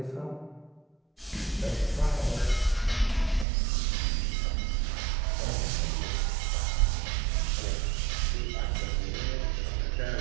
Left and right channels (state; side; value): drops out; left; at 3.5 s